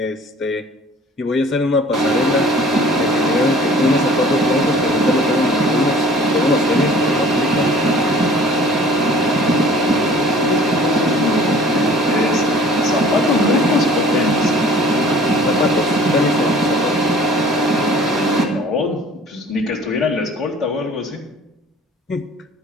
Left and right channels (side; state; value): both; normal; correlation 0.49